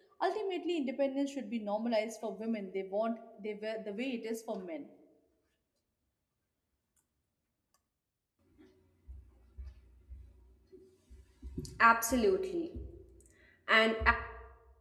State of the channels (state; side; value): identical; both; correlation 1.00